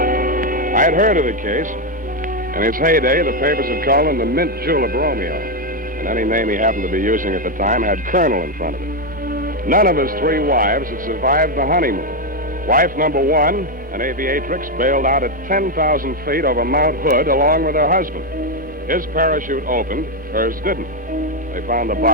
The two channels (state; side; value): normal; both; correlation 0.05